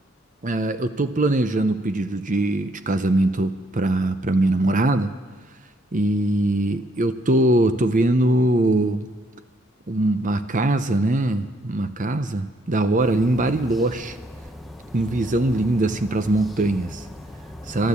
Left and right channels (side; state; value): both; normal; correlation 0.69